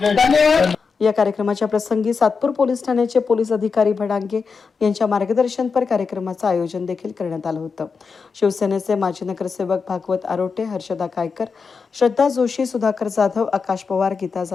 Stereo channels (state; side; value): quieter; right; 5.2 dB